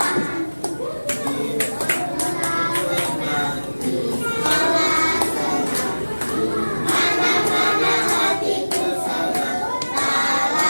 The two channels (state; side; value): inverted; both; correlation -1.00